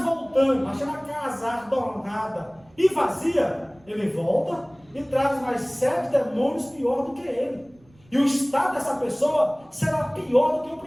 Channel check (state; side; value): noise; right; rumble, 30 dB below the sound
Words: voltando, achando a casa adornada e vazia, ele volta e traz mais 7 demônios pior do que ele. E o estado dessa pessoa será pior do que o